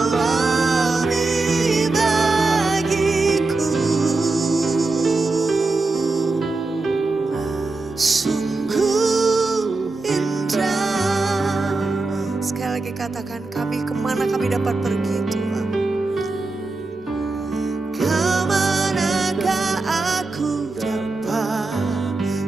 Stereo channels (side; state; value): left; quieter; 3.4 dB